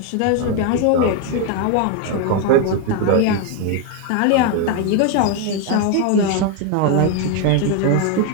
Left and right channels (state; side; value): different; both; correlation 0.01